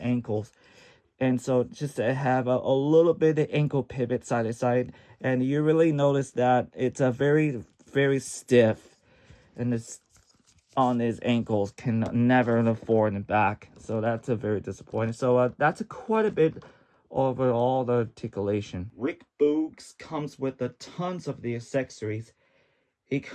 And so just to have a little bit of ankle pivot side to side, and you really notice that it's a very stiff, and it's on his ankles can never forward and back. So that's a very disappointing. So that's quite a bit overall the articulation. Rick Boogs comes with a tons of the accessories. He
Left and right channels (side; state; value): both; identical; correlation 1.00